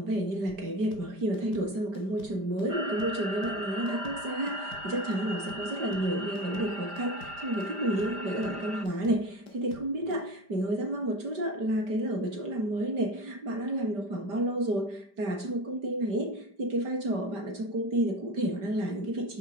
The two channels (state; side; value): late; left; 5.0 ms